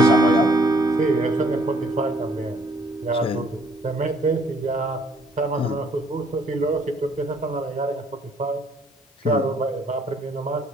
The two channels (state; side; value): normal; both; correlation 0.64